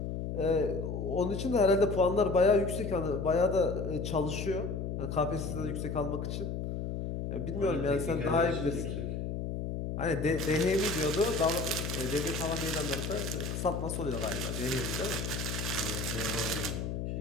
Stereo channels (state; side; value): noise; left; hum, 3 dB below the sound